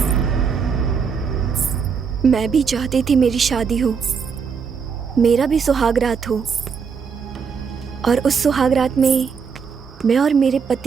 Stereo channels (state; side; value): quieter; left; 6.0 dB